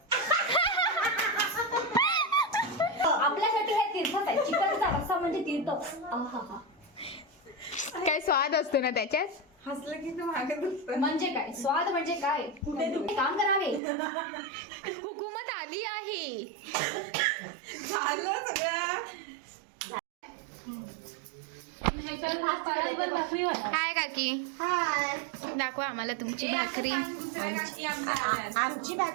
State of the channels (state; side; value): drops out; left; at 13.8 s